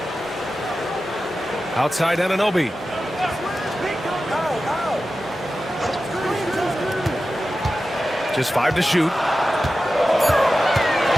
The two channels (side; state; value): both; normal; correlation 0.93